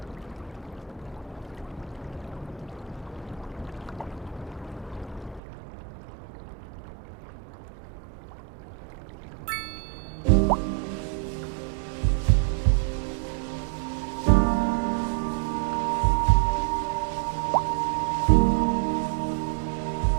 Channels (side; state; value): left; drops out; at 5.4 s